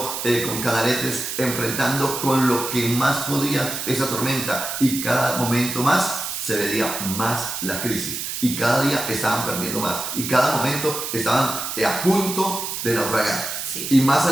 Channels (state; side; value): noise; right; hiss, 5 dB below the sound